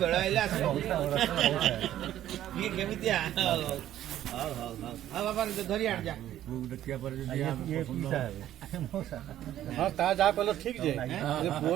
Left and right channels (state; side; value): quieter; left; 12.4 dB